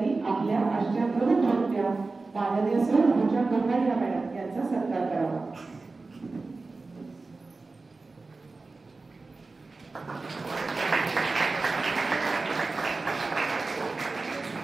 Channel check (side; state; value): left; quieter; 3.7 dB